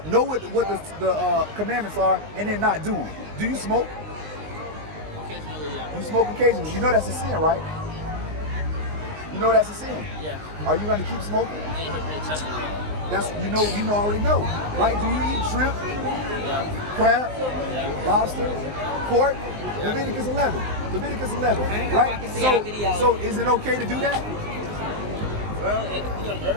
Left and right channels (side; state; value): left; late; 19 ms